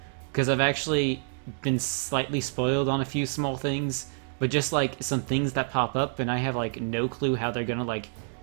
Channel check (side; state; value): left; silent; digital silence